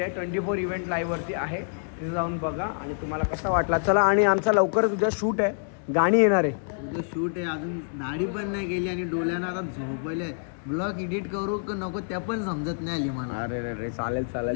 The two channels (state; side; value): silent; right; digital silence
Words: आहे. 24 इव्हेंट लाईव्हवरती आहे. तिथे जाऊन बघा आणि तुम्हाला कसा वाटला. चला आणि आमचा लवकरच उद्या शूट आहे. गाणी येणार आहे. उद्या शूट आहे. अजून दाढी पण नाही गेली आणि डोळ्यानं आता झोपले. ब्लॉग एडिट करू का नको त्या पण समजत नाही आली मला. अरे चालेल